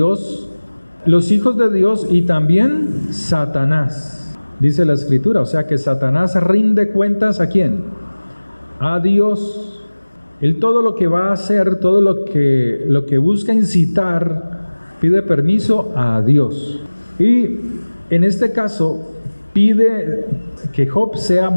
los hijos de Dios y también Satanás, dice la Escritura. O sea que Satanás rinde cuentas ¿a quién? A Dios. Él todo lo que va a hacer, todo lo que busca incitar, pide permiso a Dios. Y en este caso pide que Job sea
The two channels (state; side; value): inverted; both; correlation -1.00